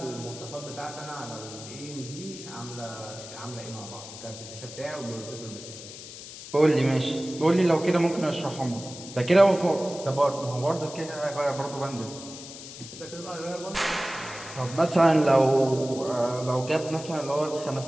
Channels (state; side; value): noise; left; hiss, 13 dB below the sound